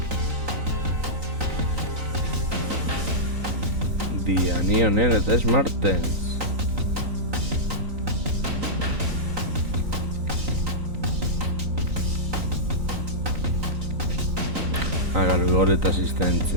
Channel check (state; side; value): late; left; 3.9 ms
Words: Diani honen eta Smartens. Gol eta